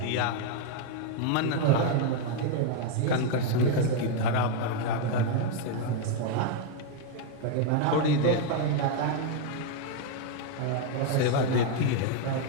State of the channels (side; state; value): both; different; correlation 0.00